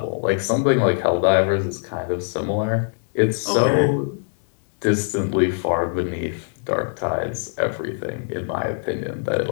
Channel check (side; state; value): right; silent; 64 dB below the other